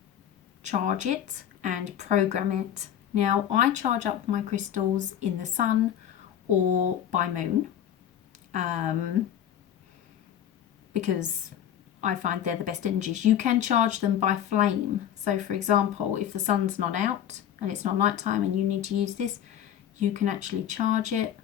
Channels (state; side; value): quieter; right; 10.1 dB